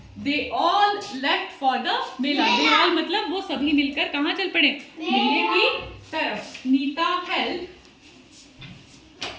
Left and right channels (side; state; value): both; identical; correlation 1.00